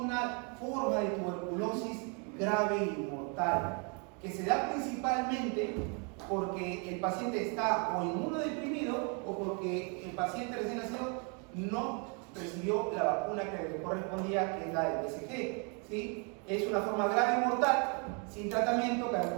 forma de tuberculosis grave y mortal que se da principalmente porque el paciente está o inmunodeprimido o porque el paciente recién nacido no recibió la vacuna que le correspondía, que es la del BCG, ¿sí? Es una forma grave y mortal, sin tratamiento,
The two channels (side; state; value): left; quieter; 35.9 dB